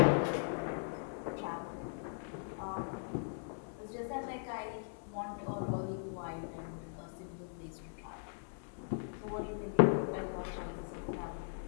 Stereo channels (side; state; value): right; silent; digital silence